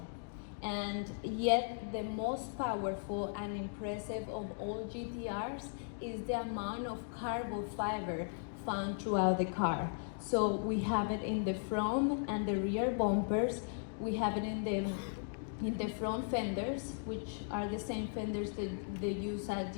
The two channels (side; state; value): right; silent; digital silence